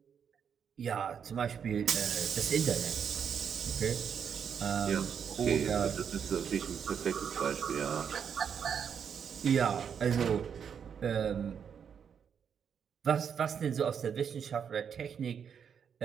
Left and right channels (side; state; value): left; quieter; 7.4 dB